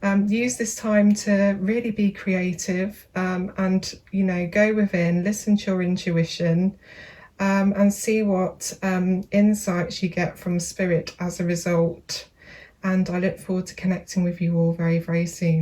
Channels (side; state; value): both; identical; correlation 1.00